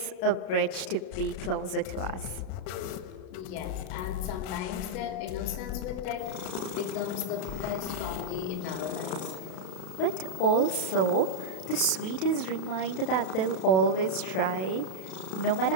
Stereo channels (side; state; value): right; late; 32 ms